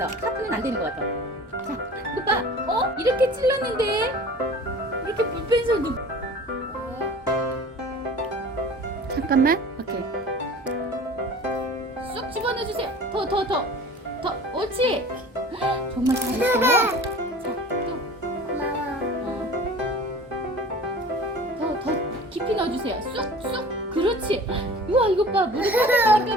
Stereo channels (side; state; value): both; normal; correlation 0.42